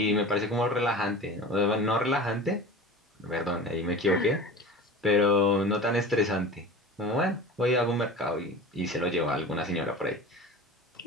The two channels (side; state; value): both; normal; correlation 0.34